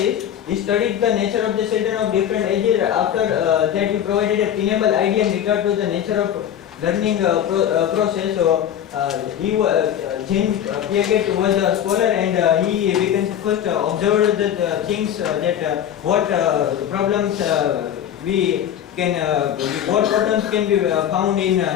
He studied the nature of the children of different ages. After that, he provided a tenable idea in regard to the nature of learning process. So James Leggett was a scholar, and he first observed the things that what problems what problems can be found in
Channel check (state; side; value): quieter; right; 10.1 dB